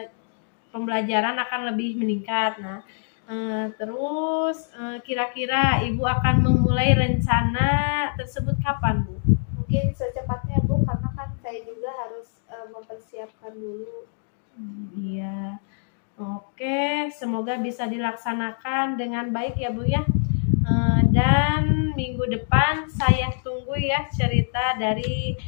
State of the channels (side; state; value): right; silent; digital silence